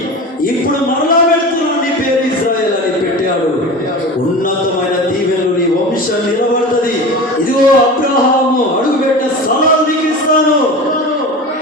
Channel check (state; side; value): normal; both; correlation 0.31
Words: ఇప్పుడు మరలా పెడుతున్నాను, నీ పేరు ఇశ్రాయేల్ అని పెట్టాడు. ఉన్నతమైన దీవెనలు నీ వంశం నిలబడుతుంది. ఇదిగో అబ్రహాము అడుగుపెట్టిన స్థలాలు నీకు ఇస్తాను